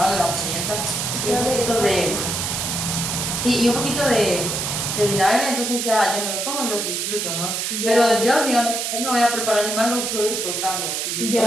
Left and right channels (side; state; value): right; noise; hiss, 2 dB below the sound